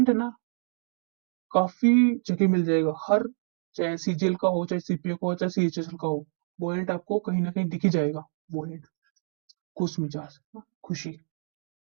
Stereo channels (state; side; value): silent; left; 59 dB below the other